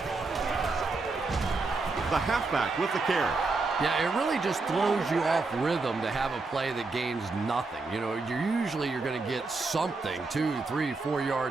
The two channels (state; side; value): quieter; left; 3.8 dB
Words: The halfback with the carry. Yeah, it really just throws you off rhythm to have a play that gains nothing. You know, you're going to get something, 2, 3, 4